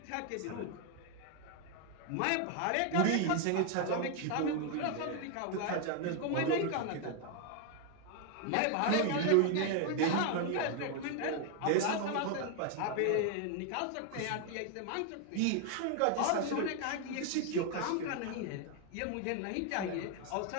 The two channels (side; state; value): both; different; correlation 0.01